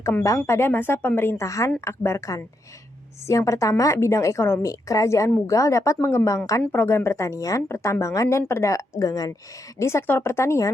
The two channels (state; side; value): normal; both; correlation 0.81